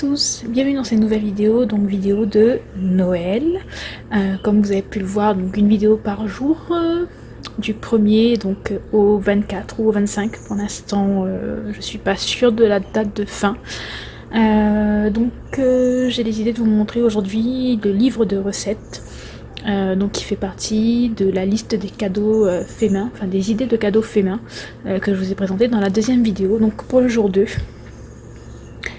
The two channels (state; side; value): identical; both; correlation 1.00